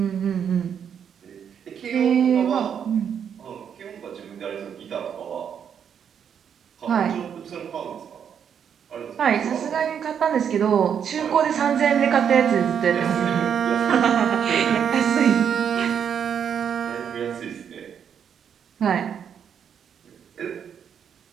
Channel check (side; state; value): left; quieter; 8.0 dB